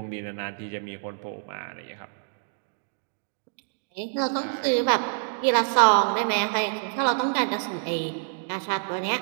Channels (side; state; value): left; silent; digital silence